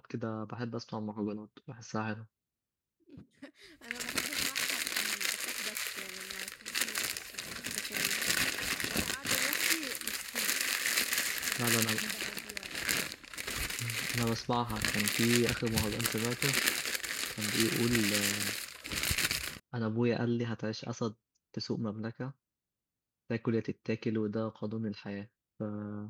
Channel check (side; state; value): both; identical; correlation 1.00